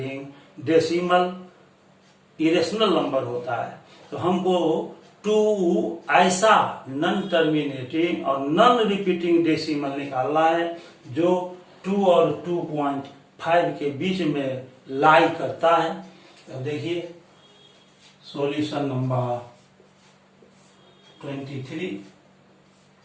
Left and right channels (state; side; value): identical; both; correlation 1.00